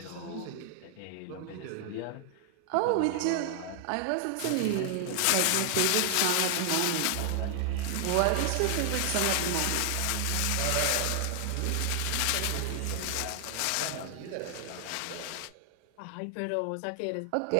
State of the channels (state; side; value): different; both; correlation 0.00